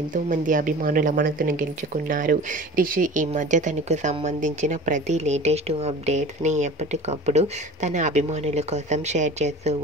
అభిమానుల మనసును గెలుచుకున్నారు. రిషి ఈ మధ్య తనకు సంబంధించిన ప్రతి లేటెస్ట్ అప్డేట్స్ని ఎప్పటికప్పుడు తన అభిమానుల కోసం షేర్ చేస్తూ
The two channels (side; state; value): both; normal; correlation 0.40